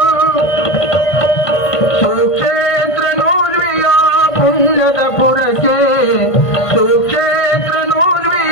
ಸುಕ್ಷೇತ್ರ ನೂರ್ವಿಯ ಪುಣ್ಯದ ಪುರಕ್ಕೆ, ಸುಕ್ಷೇತ್ರ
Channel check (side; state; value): right; late; 1.5 ms